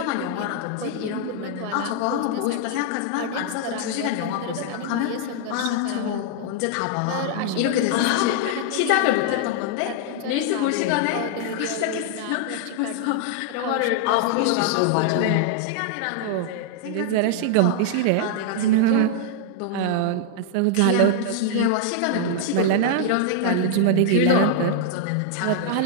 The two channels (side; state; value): both; different; correlation -0.01